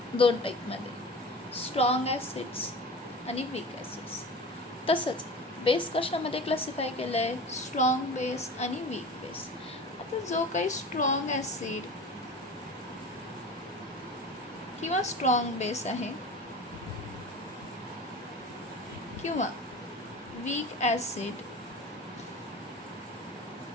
2 टाईपमध्ये, स्ट्रॉंग ॲसिड्स आणि वीक ॲसिड्स. तसंच बेस कशामध्ये क्लासिफाय केलं आहे? स्ट्रॉंग बेस आणि वीक बेस. आता जो काही स्ट्रॉंग ॲसिड किंवा स्ट्रॉंग बेस आहे किंवा वीक ॲसिड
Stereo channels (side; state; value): both; normal; correlation 0.35